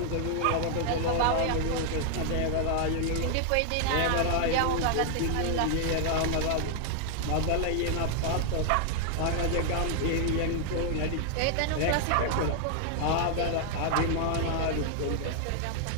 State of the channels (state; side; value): different; both; correlation 0.00